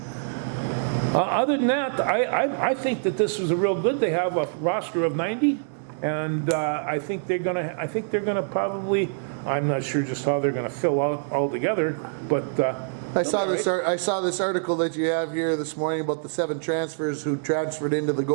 Other than that, I think that this was a real good. They have a roster of 90, and I think they're gonna probably. I'm not sure just how they're gonna fill out altogether, but. I saw this article that you have here this morning about the 7 transfers who transferred into the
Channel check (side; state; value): left; silent; digital silence